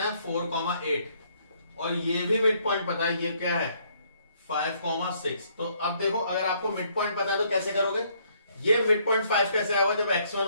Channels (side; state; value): both; inverted; correlation -0.68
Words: है 4,8, और ये भी मिड पॉइंट पता है, ये क्या है 5,6। तो अब देखो, अगर आपको मिड पॉइंट पता है तो कैसे करोगे, ये मिड पॉइंट 5 कैसे आएगा, जब x1